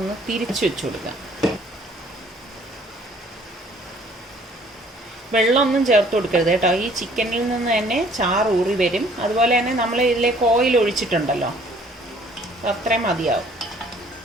തിരിച്ച് വെച്ച് കൊടുക്കാം. വെള്ളമൊന്നും ചേർത്ത് കൊടുക്കരുത് കേട്ടോ. ഈ ചിക്കനിൽ നിന്ന് തന്നെ ചാറ് ഊറി വരും. അതുപോലെ തന്നെ നമ്മൾ ഇതിലേക്ക് ഓയിൽ ഒഴിച്ചിട്ടുണ്ടല്ലോ, അത്രയും മതിയാവും.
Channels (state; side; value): normal; both; correlation 0.58